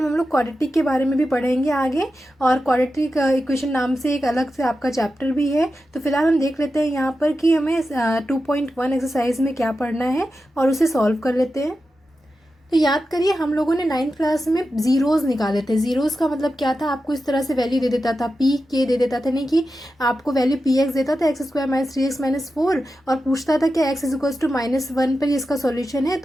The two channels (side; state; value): both; normal; correlation 0.91